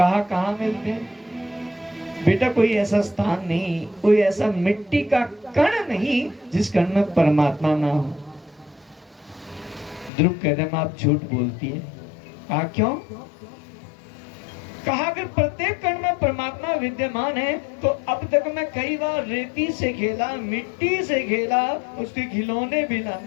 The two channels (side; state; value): right; drops out; at 10.1 s